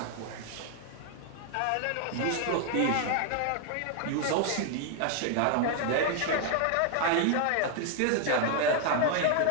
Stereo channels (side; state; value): both; different; correlation 0.00